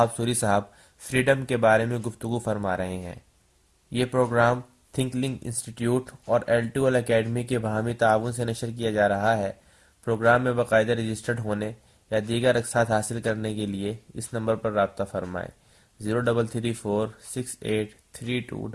سوری صاحب فریڈم کے بارے میں گفتگو فرما رہے ہیں۔ یہ پروگرام تھنک لنک انسٹیٹیوٹ اور L2L اکیڈمی کے باہمی تعاون سے نشر کیا جا رہا ہے۔ پروگرام میں باقاعدہ رجسٹرڈ ہونے یا دیگر اقساط حاصل کرنے کے لیے اس نمبر پر رابطہ فرمائیں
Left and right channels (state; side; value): identical; both; correlation 1.00